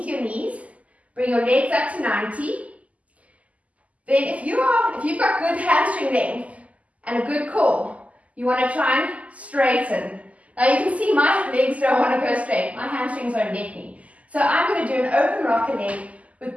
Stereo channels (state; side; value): late; left; 0.071 ms